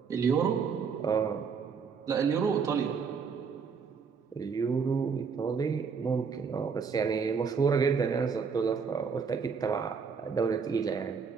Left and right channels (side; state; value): left; quieter; 5.8 dB